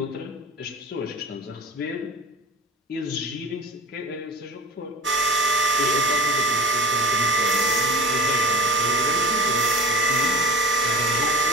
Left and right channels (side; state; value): both; normal; correlation 0.35